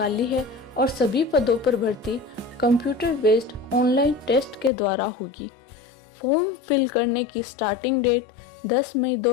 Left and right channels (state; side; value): drops out; right; at 4.7 s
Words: है और सभी पदों पर भर्ती कंप्यूटर बेस्ड ऑनलाइन टेस्ट के द्वारा होगी। फॉर्म फिल करने की स्टार्टिंग डेट 10 मई